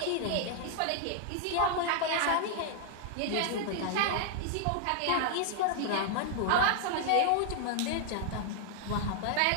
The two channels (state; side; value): different; both; correlation 0.00